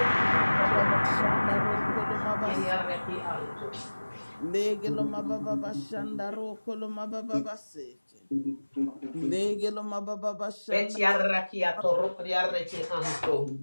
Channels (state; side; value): inverted; both; correlation -1.00